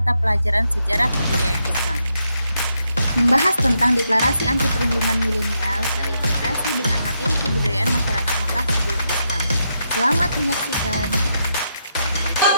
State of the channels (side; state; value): both; inverted; correlation -0.81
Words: pelajaran Sejarah Kebudayaan Islam. Membahas tentang deklarasi anti perlindungan milenial terintegrasi dengan materi kebudayaan masyarakat Mekah sebelum Islam. Selamat menyaksikan.